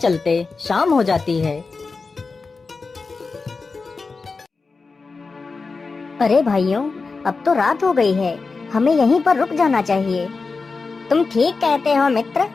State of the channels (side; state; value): right; quieter; 4.3 dB